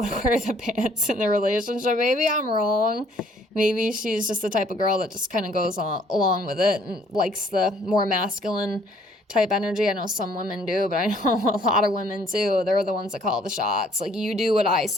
wear the pants in the relationship. Maybe I'm wrong. Maybe she's just the type of girl that just kind of goes along with it and likes the more masculine type energy. I know some women do, but I know a lot of women too. They're the ones that call the shots. Like, you do what I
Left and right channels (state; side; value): normal; both; correlation 0.61